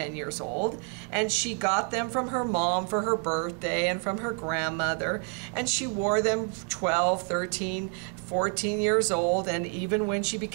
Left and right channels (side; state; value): left; quieter; 36.0 dB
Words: years old. And she got them from her mom for her birthday and from her grandmother. And she wore them 12, 13, 14 years old. And even when she